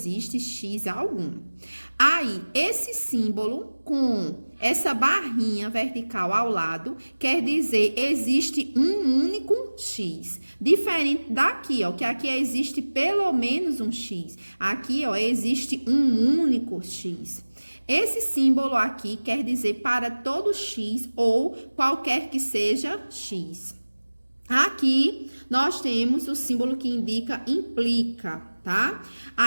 X algum. Aí, esse símbolo com essa barrinha vertical ao lado, quer dizer, existe um único X. Diferente daqui, ó, que aqui existe pelo menos um X. Aqui, ó, existe um único X. Esse símbolo aqui quer dizer para todo X ou qualquer que seja X. Aqui, nós temos o símbolo que indica implica, tá?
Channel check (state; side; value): inverted; both; correlation -1.00